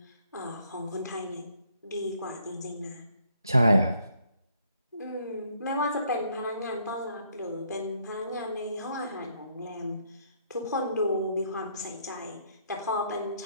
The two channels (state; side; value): inverted; both; correlation -0.68